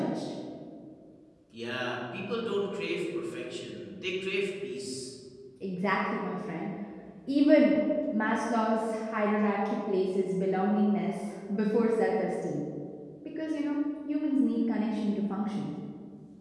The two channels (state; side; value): identical; both; correlation 1.00